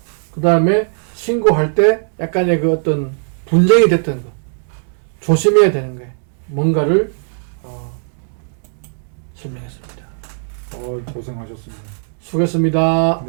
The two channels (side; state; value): left; silent; 67 dB below the other